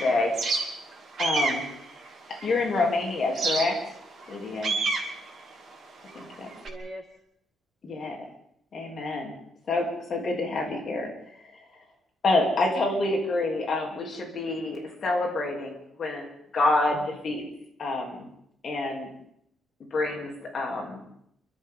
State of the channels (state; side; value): normal; both; correlation 0.76